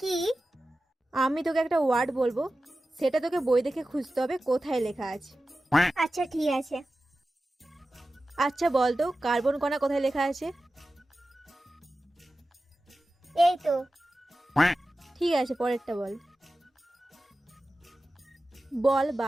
কি? আমি তোকে একটা ওয়ার্ড বলবো, সেটা তোকে বই দেখে খুঁজতে হবে কোথায় লেখা আছে। আচ্ছা ঠিক আছে। আচ্ছা বল তো কার্বন কণা কোথায় লেখা আছে? এই তো। ঠিক আছে, পরেরটা বল। বল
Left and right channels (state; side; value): normal; both; correlation 0.94